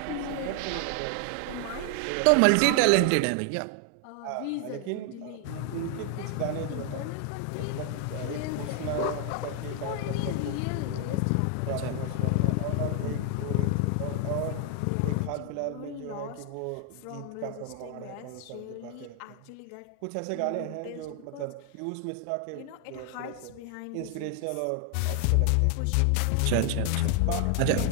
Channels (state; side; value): different; both; correlation 0.00